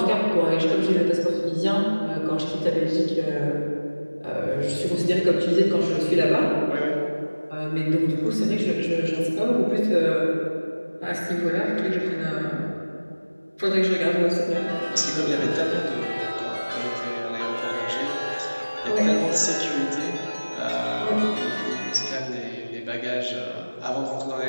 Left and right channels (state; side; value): inverted; both; correlation -1.00